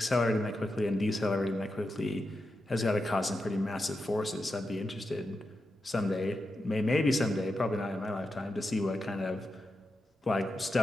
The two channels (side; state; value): both; normal; correlation 0.88